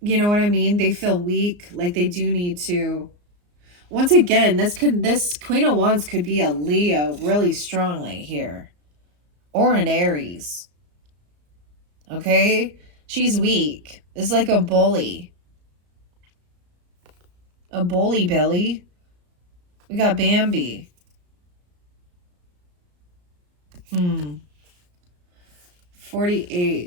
you know what I mean? They feel weak, like they do need to. Once again, this Queen of Wands could be a Leo really strongly here, or an Aries. Okay, she's weak. It's like a bully. A bully Billy. We got Bambi.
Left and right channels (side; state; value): left; late; 34 ms